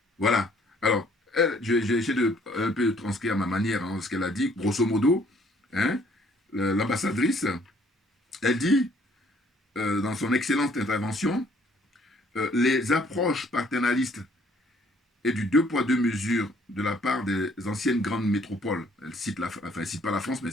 Voilà. Alors, j'ai essayé de un peu transcrire à ma manière ce qu'elle a dit, grosso modo. Hein, l'ambassadrice, elle dit, dans son excellente intervention, les approches paternalistes et du deux poids deux mesures de la part des anciennes grandes métropoles. Elle cite elle cite pas la France, mais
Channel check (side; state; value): both; normal; correlation 0.62